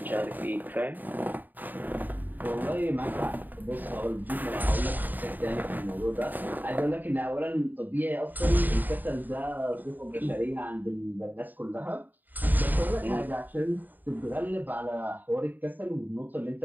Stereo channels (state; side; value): late; left; 0.088 ms